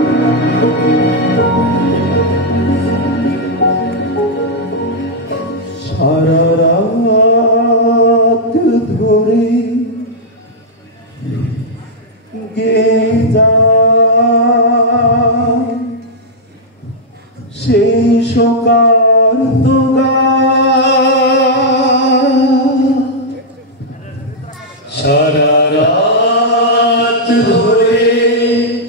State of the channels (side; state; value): both; normal; correlation -0.06